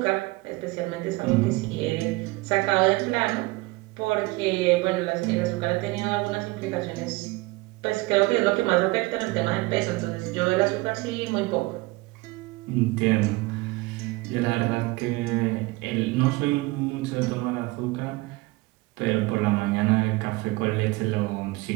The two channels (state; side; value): quieter; left; 22.4 dB